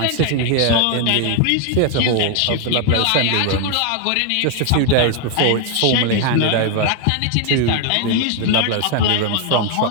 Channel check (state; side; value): different; both; correlation 0.01